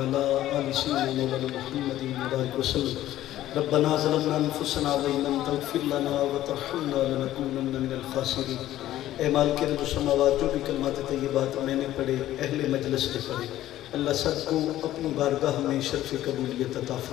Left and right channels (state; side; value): quieter; right; 13.8 dB